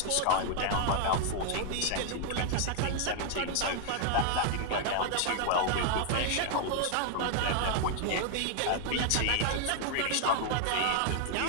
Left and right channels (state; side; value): different; both; correlation 0.00